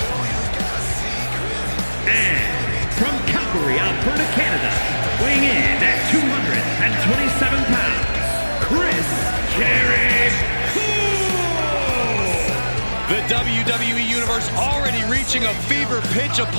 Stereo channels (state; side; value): inverted; both; correlation -1.00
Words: From Calgary, Alberta, Canada, weighing in at 227 pounds, Chris Jericho. The WWE Universe already reaching a fever pitch